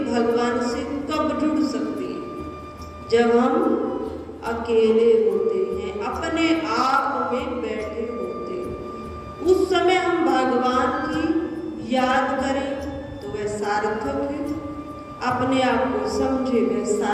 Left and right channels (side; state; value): both; identical; correlation 1.00